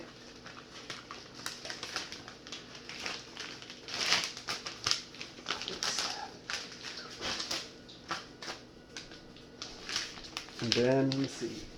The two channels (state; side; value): identical; both; correlation 1.00